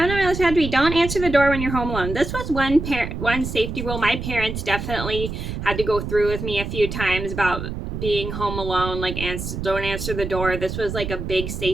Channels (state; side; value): noise; right; rumble, 6 dB below the sound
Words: on my list had to be don't answer the door when you're home alone. This was one safety rule my parents definitely had to go through with me a few times about being home alone, like don't answer the door. This was like a big